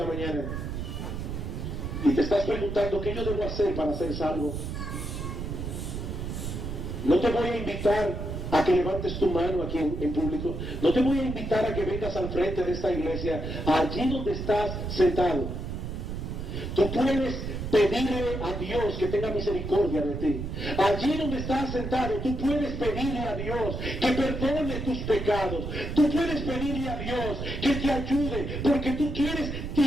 mañana y te estás preguntando qué yo debo hacer para ser salvo. No te voy a invitar a que levantes tu mano aquí en público. No te voy a invitar a que vengas al frente de esta iglesia, allí donde estás sentado. Tú puedes pedirle a Dios que tenga misericordia de ti. Allí donde estás sentado, tú puedes pedirle a Dios que perdone tus pecados. Tú puedes pedirle a Dios que te ayude, porque tú quieres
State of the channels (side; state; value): right; noise; rumble, 5 dB below the sound